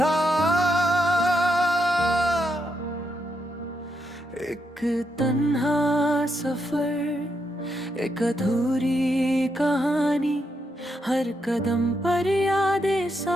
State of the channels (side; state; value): both; normal; correlation 0.81